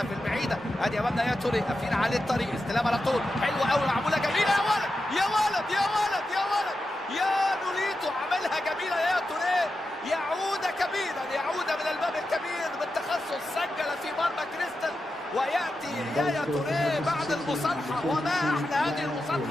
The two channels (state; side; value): normal; both; correlation 0.90